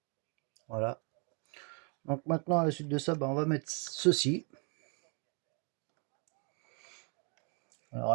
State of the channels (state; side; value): quieter; left; 37.1 dB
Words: Voilà. Donc maintenant, à la suite de ça, bah, on va mettre ceci. Alors